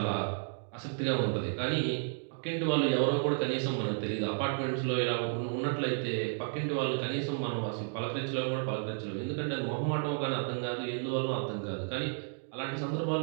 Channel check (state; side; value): silent; left; digital silence